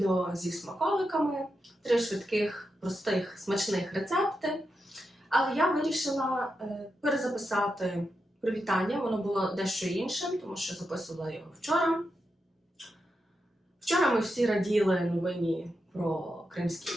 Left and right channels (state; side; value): normal; both; correlation 0.87